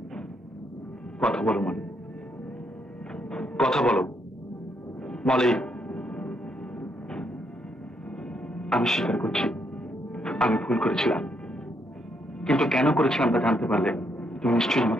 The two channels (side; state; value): both; normal; correlation 0.75